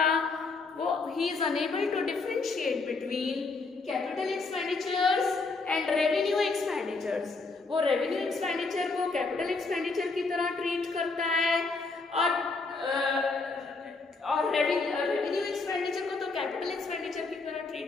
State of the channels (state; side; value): quieter; right; 3.9 dB